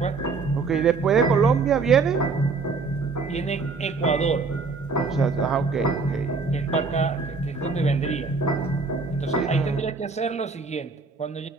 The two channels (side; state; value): left; quieter; 4.2 dB